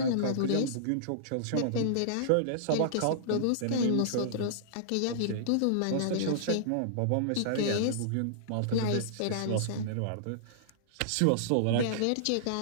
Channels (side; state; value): both; different; correlation -0.02